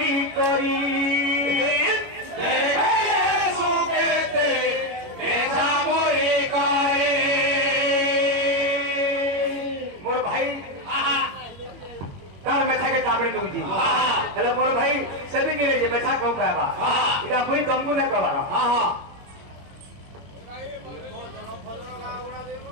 করি मोर भाई तार मेथा के काबड़ी दूजी हेलो मोर भाई सभी गिरे जे मेथा कहू कहबा इका मुई तुमको ना कहबा हां हां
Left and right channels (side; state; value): left; late; 21 ms